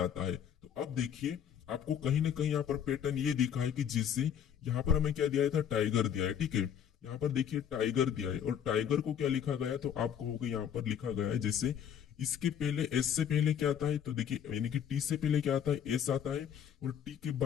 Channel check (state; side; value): quieter; right; 8.9 dB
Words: है। तो अब देखिए आपको कहीं ना कहीं यहाँ पर पैटर्न ये दिखा है कि जिससे यहाँ पर हमें क्या दिया था टाइगर दिया है। ठीक है, यहाँ पर देखिए टाइगर दिया है और टाइगर को क्या लिखा गया, तो आप कहोगे यहाँ पर लिखा गया है जैसे इसके पहले एस से पहले क्या आता है, तो देखिए यानी कि टी से पहले क्या आता है एस आता है और टी के